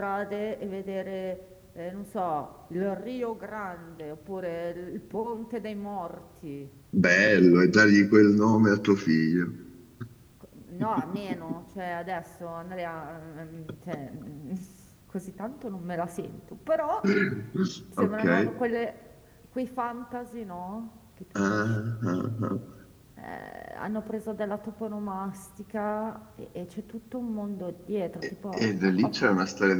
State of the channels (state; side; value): identical; both; correlation 1.00